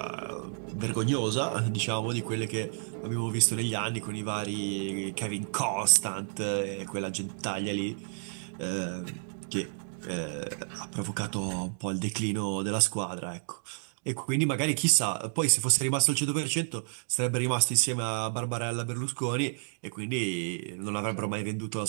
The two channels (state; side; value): silent; left; digital silence